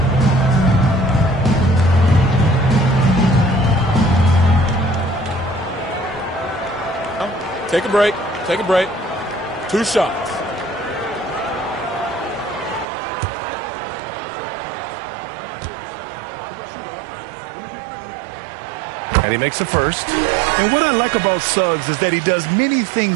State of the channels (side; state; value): left; drops out; at 12.9 s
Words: Take a break. Take a break. 2 shots. And he makes the first. And what I like about Suggs is that he does many